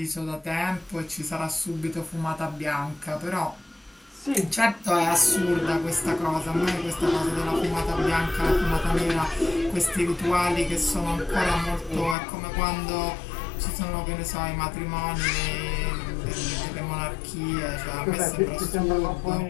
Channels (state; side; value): drops out; right; at 12.2 s